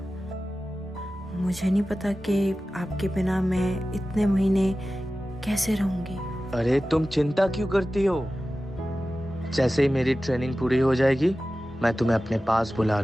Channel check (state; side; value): normal; both; correlation 0.95